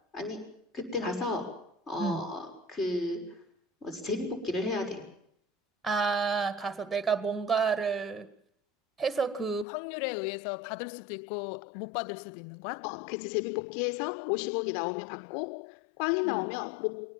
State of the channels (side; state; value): right; drops out; at 9.7 s